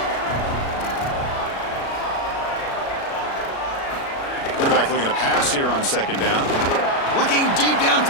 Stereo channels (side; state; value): right; late; 36 ms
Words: Quarterback looking to pass here on second down. Looking deep